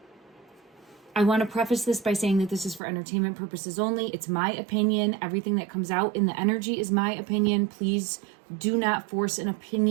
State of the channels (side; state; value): left; drops out; at 2.8 s